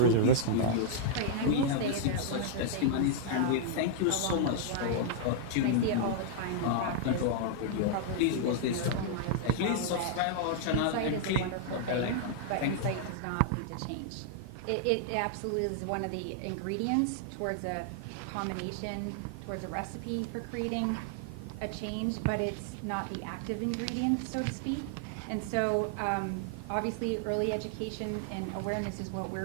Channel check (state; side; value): different; both; correlation -0.01